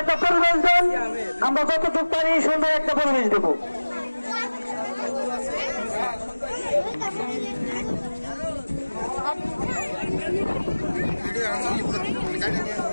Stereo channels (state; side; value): inverted; both; correlation -1.00